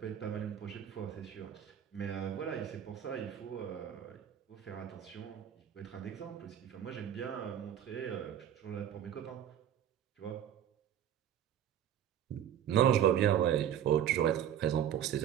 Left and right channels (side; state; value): left; quieter; 10.0 dB